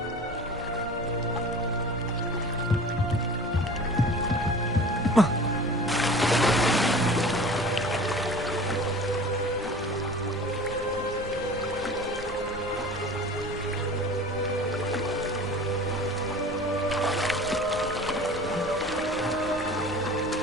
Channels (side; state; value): both; normal; correlation 0.40